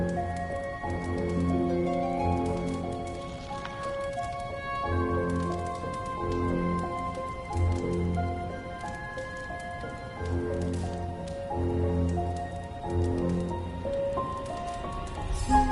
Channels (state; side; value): identical; both; correlation 1.00